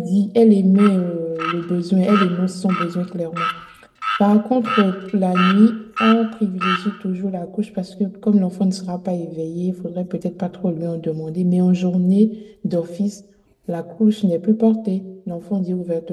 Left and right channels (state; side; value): identical; both; correlation 1.00